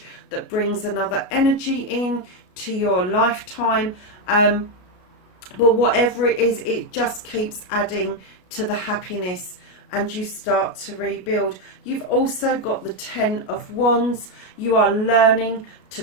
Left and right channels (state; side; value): late; right; 33 ms